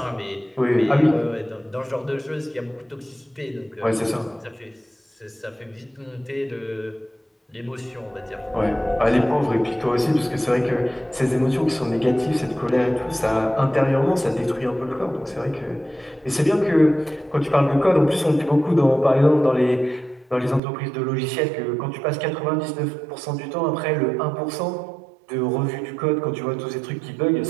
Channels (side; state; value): left; drops out; at 20.6 s